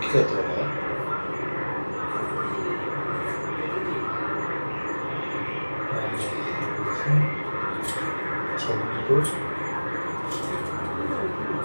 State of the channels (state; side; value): inverted; both; correlation -1.00